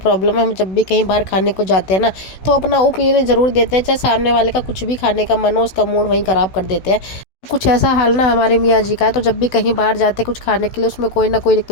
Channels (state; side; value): late; right; 16 ms